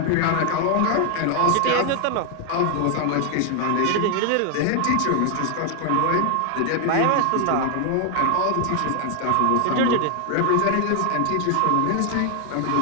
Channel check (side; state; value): both; different; correlation 0.00